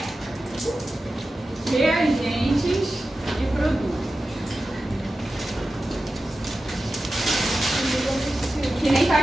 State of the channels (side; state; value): both; normal; correlation 0.93